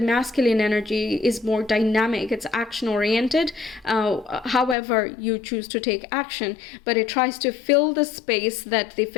energy is more dynamic, it's action-oriented. However, you choose to take action, but it tries to fill the space that the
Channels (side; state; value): right; drops out; at 4.8 s